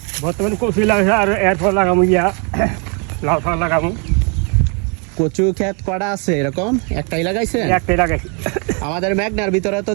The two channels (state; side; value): quieter; left; 36.3 dB